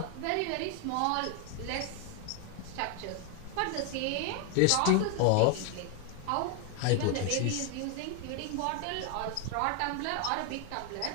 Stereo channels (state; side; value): different; both; correlation 0.01